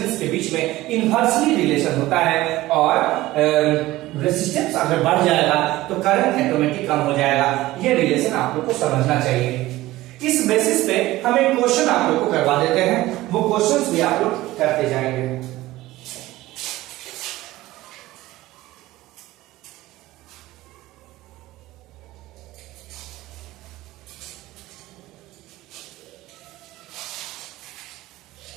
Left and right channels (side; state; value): left; quieter; 17.4 dB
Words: के बीच में इनवर्सली रिलेशन होता है, और रेजिस्टेंस अगर बढ़ जाएगा तो करंट ऑटोमेटिक कम हो जाएगा। ये रिलेशन आप लोग को समझना चाहिए। इस बेसिस पे हम एक क्वेश्चन आप लोग को करवा देते हैं, वो क्वेश्चंस भी आप लोग करते जाएंगे।